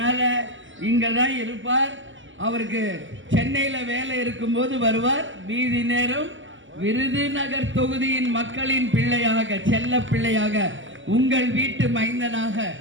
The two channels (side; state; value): left; late; 0.55 ms